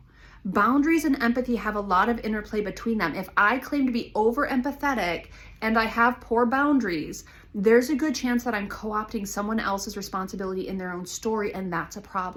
Boundaries and empathy have a lot of interplay between them. If I claim to be over empathetic and I have poor boundaries, there's a good chance that I'm co-opting someone else's responsibility in their own story, and that's a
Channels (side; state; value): both; identical; correlation 1.00